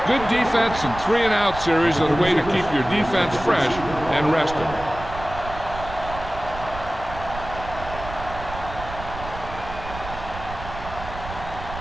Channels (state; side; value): noise; right; rumble, 11 dB below the sound